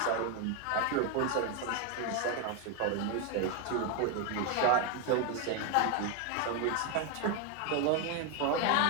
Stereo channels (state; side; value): different; both; correlation 0.01